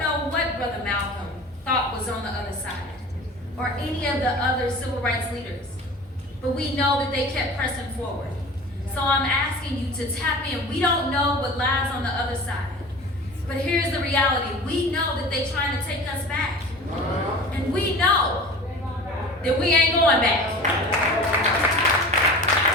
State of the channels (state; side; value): normal; both; correlation 0.38